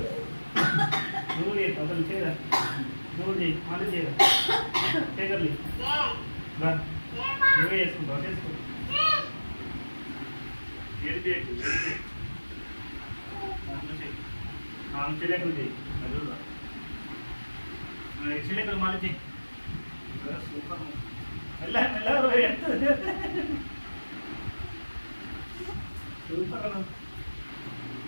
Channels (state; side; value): inverted; both; correlation -1.00